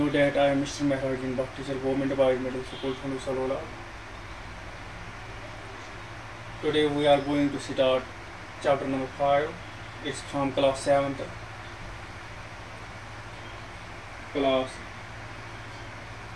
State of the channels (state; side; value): identical; both; correlation 1.00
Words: that I am Mr. Mehrajin, Bhatt teacher, Government Boys Middle School, Thanu Salola. Today we are going to start chapter number 5. It's from class 7th. Class